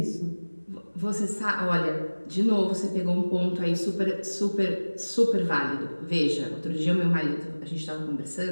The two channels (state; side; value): inverted; both; correlation -1.00